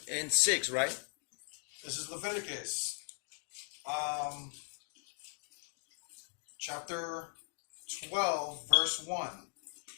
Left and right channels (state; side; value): silent; right; 52 dB below the other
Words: and 6, right? This is Leviticus chapter 12, verse 1.